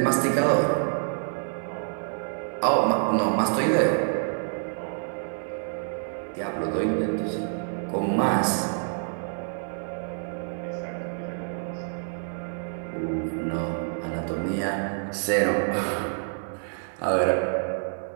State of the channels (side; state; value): left; silent; digital silence